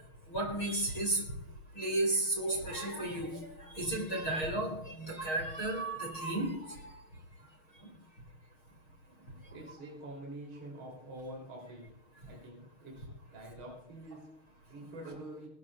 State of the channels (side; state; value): right; late; 6.4 ms